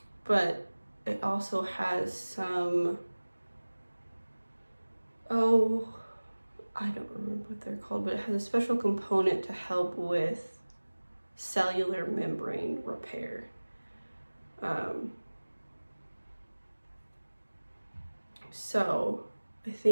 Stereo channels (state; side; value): inverted; both; correlation -1.00